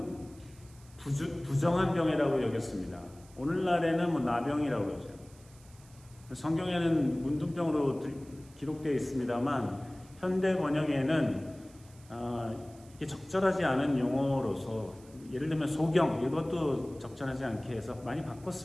부정한 병이라고 여겼습니다. 오늘날에는 나병이라고 그러죠. 성경에는 문둥병으로 기록되어 있습니다만 현대 번역에는 이게 적절하지 않은 용어로서 예를 들면 소경 이것도 적절하지 않게 해서 많이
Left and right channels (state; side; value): noise; right; hiss, 25 dB below the sound